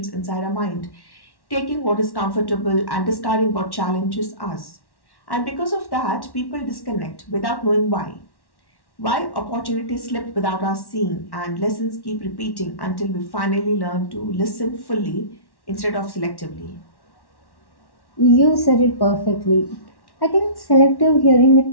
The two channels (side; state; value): right; late; 1.1 ms